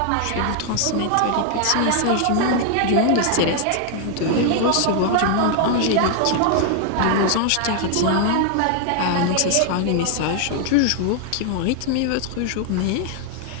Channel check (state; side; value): different; both; correlation 0.00